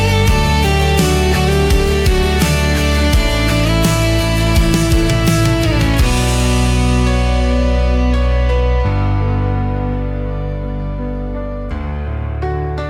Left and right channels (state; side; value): identical; both; correlation 1.00